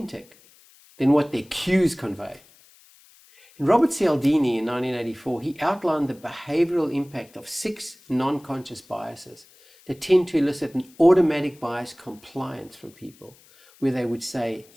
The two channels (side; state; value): left; noise; hiss, 27 dB below the sound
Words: than what their cues convey. In Robert Cialdini in 1984, he outlined the behavioral impact of 6 non-conscious biases that tend to elicit an automatic bias compliance from people, where they would say